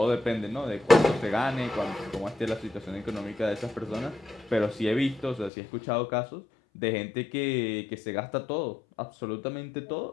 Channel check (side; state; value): right; drops out; at 5.5 s